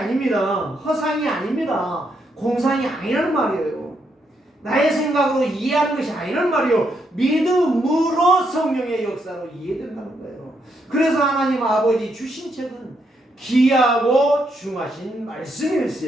허상이 아닙니다. 공상이 아니라는 말이에요. 나의 생각으로 이해하는 것이 아니라는 말이에요. 믿음으로 성령의 역사로 이해된다는 거예요. 그래서 하나님 아버지 주신 책은 귀하고 중하신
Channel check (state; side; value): normal; both; correlation 0.78